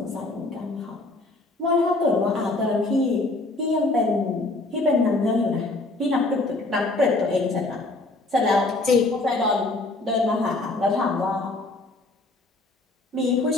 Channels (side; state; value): right; quieter; 3.0 dB